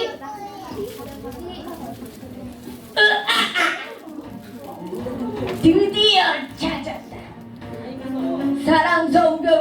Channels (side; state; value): both; identical; correlation 1.00